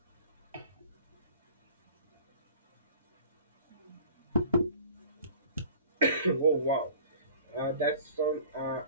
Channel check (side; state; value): both; inverted; correlation -0.47